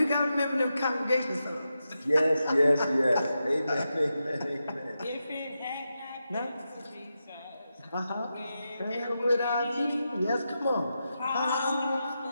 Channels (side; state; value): both; inverted; correlation -0.88